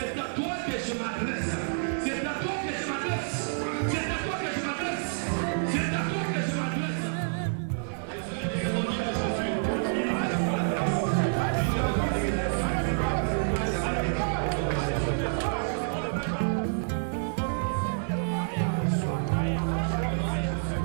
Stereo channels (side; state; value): left; silent; digital silence